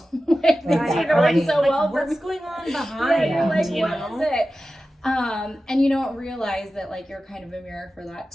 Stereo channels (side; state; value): both; normal; correlation 0.94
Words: like things are going so well? What's going on behind? You're like, what is it? And you don't realize that like you're kind of a mirror for that